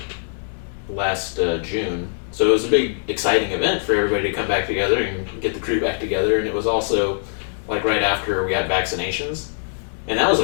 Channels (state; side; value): silent; right; digital silence